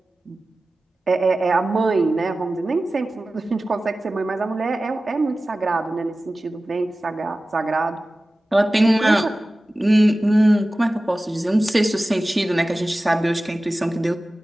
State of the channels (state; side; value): normal; both; correlation 0.96